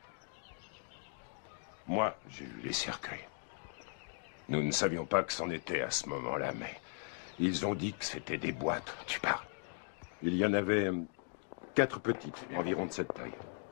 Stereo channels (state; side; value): silent; right; 52 dB below the other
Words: Moi, j'ai vu les cercueils. Nous ne savions pas que c'en était à ce moment-là, mais ils ont dit que c'était des boîtes. Tu parles. Il y en avait 4 petites, environ de cette taille,